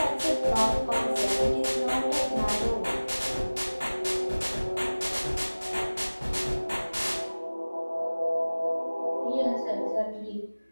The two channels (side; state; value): both; inverted; correlation -1.00